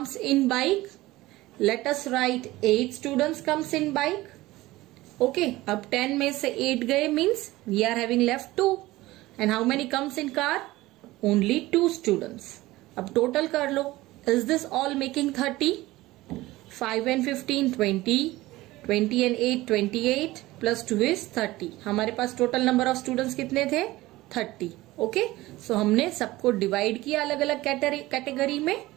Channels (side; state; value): left; quieter; 18.4 dB